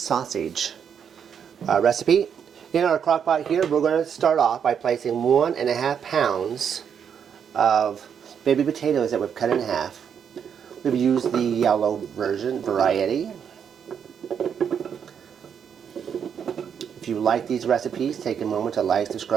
recipe. In our crockpot here, we're going to start off by placing 1.5 pounds of baby potatoes that we've cut in half. We've used the yellow variety. If you like these recipes, take a moment to like,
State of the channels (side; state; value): left; quieter; 7.7 dB